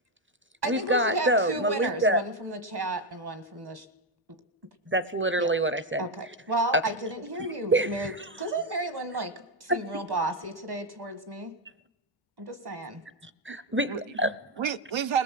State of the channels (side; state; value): both; normal; correlation 0.06